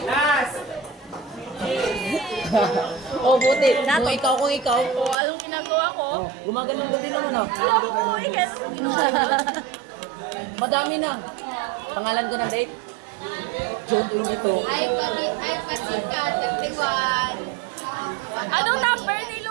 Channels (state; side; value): drops out; left; at 5.2 s